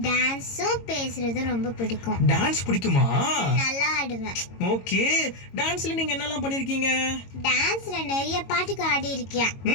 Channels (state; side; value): late; right; 22 ms